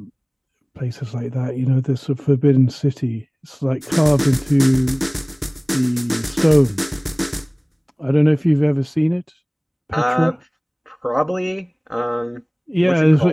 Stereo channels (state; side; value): identical; both; correlation 1.00